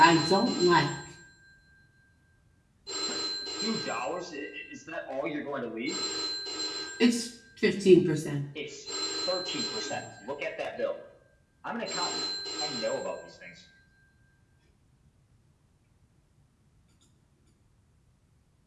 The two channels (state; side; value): identical; both; correlation 1.00